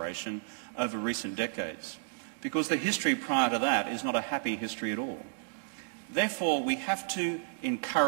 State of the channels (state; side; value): silent; left; 56 dB below the other